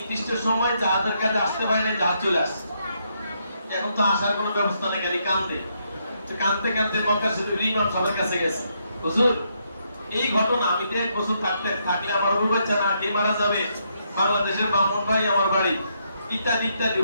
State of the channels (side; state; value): both; inverted; correlation -0.77